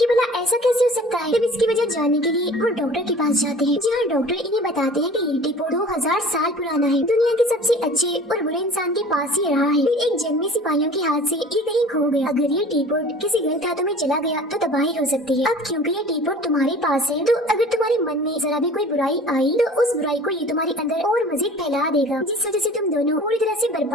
भला ऐसा कैसे हो सकता है। तब इसकी वजह जानने के लिए वो डॉक्टर के पास जाते हैं, जहाँ डॉक्टर इन्हें बताते हैं कि ये टीपोट 2000 साल पुराना है, दुनिया के सबसे अच्छे और बुरे इंसान के पास ही रहा है। फिर एक जंग में सिपाहियों के हाथ से ये कहीं खो गया। अगर ये टीपोट किसी गलत हाथों में चला गया तो तबाही हो सकती है। अब क्योंकि ये टीपोट तुम्हारे पास है, तो अगर तुम्हारे मन में जरा भी कोई बुराई आई तो उस बुराई को ये तुम्हारे अंदर और मजीद फैला देगा, जिस वजह से तुम दोनों पूरी तरह से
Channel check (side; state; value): both; normal; correlation 0.45